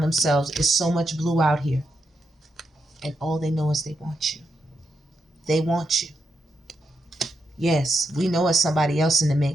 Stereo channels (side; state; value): both; normal; correlation 0.82